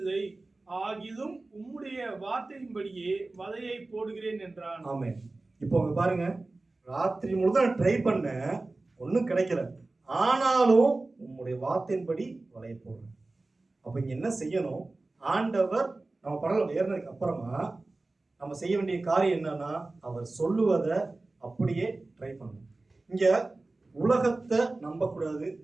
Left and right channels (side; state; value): left; quieter; 3.2 dB